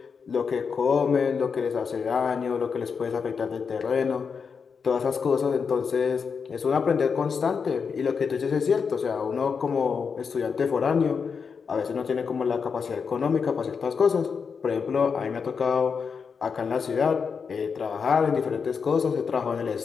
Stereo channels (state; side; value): quieter; right; 5.8 dB